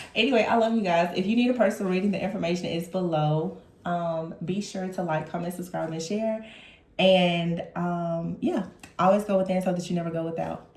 Anyway, I love you guys. If you need a personal reading, the information is below. Be sure to like, comment, subscribe, and share. And yeah, always go within so that you never go without.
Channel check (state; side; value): identical; both; correlation 1.00